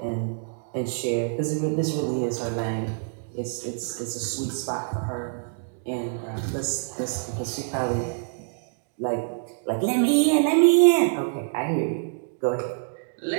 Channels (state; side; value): silent; left; digital silence